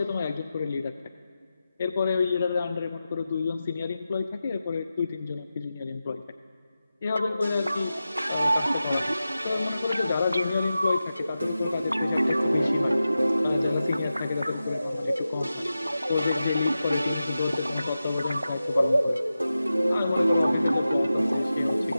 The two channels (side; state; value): both; inverted; correlation -0.93